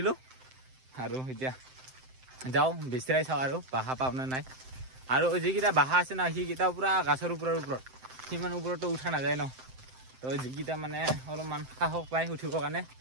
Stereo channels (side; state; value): left; late; 7.7 ms